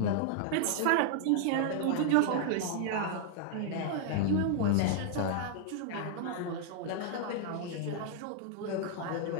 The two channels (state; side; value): different; both; correlation -0.01